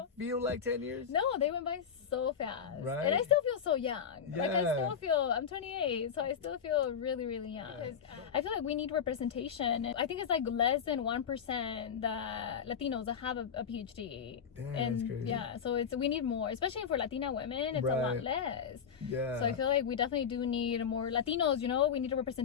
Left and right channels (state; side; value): quieter; right; 7.3 dB